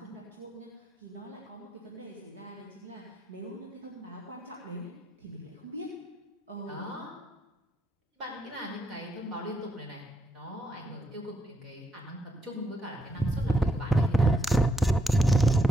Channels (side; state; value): both; normal; correlation 0.78